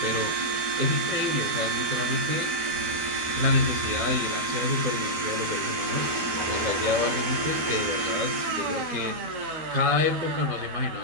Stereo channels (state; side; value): late; left; 12 ms